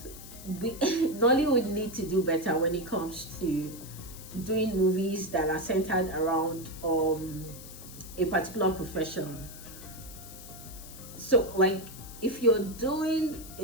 Nollywood need to do better when it comes to doing movies that are centered around a particular profession. So like, if you're doing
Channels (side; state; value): left; noise; hiss, 15 dB below the sound